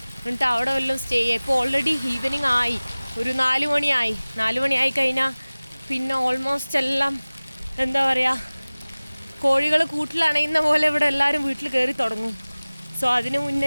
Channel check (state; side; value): inverted; both; correlation -1.00